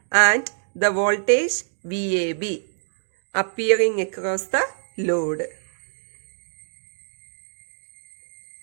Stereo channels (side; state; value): left; silent; digital silence